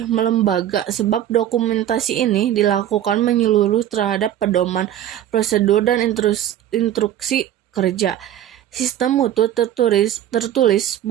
melembaga sebab dokumentasi ini dilakukan menyeluruh terhadap pedoman, prosedur, dan instruksi kerja. Sistem mutu tertulis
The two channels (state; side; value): quieter; left; 11.5 dB